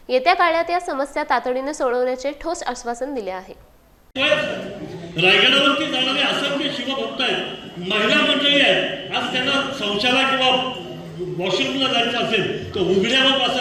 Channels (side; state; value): both; identical; correlation 1.00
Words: येत्या काळात या समस्या तातडीने सोडवण्याचे ठोस आश्वासन दिले आहे। रायगडावरती जाणारे असंख्य शिवभक्त आहेत, महिला मंडळी आहेत, आज त्यांना शौचालय किंवा वॉशरूमला जायचं असेल तर उघड्यावर